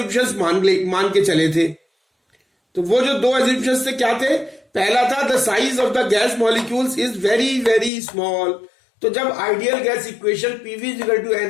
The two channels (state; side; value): drops out; right; at 7.9 s